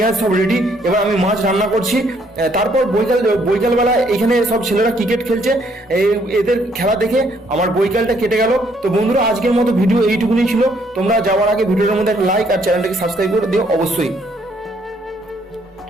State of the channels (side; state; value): both; normal; correlation 0.68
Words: সব রেডি, এবার আমি মাছ রান্না করছি। তারপর বৈকালবেলা এখানে সব ছেলেরা ক্রিকেট খেলছে, এদের খেলা দেখে আমার বৈকালটা কেটে গেল। তো বন্ধুরা, আজকের মতো ভিডিও এইটুকুনি ছিল। তোমরা যাওয়ার আগে ভিডিওর মধ্যে একটা লাইক আর চ্যানেলটাকে সাবস্ক্রাইব করে দিও অবশ্যই।